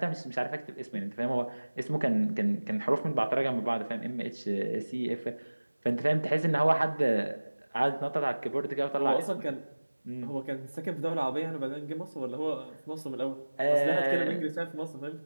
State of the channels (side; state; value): both; inverted; correlation -1.00